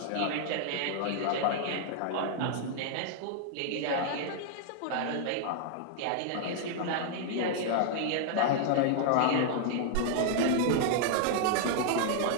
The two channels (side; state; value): both; different; correlation -0.01